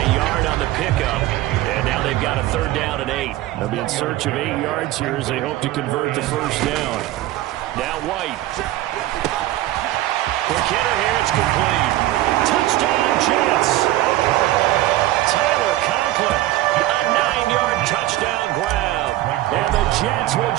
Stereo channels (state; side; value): quieter; left; 15.6 dB